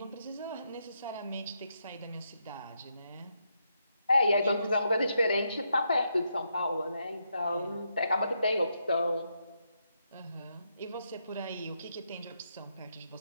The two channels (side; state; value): both; inverted; correlation -0.80